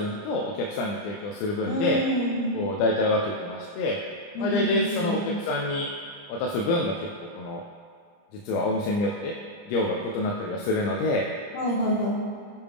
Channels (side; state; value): right; late; 29 ms